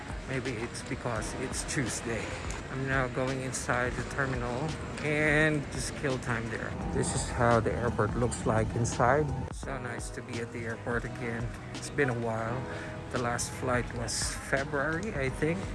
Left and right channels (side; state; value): both; identical; correlation 1.00